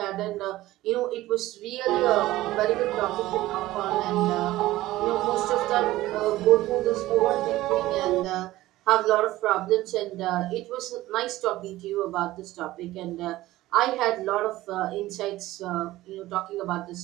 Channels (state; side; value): quieter; left; 16.6 dB